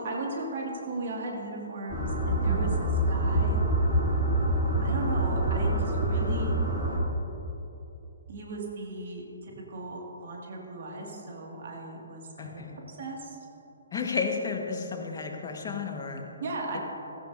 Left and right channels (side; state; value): both; inverted; correlation -0.38